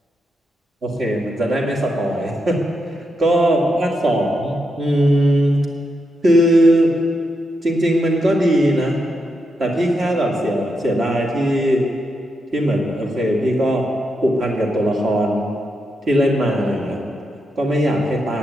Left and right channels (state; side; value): normal; both; correlation 0.84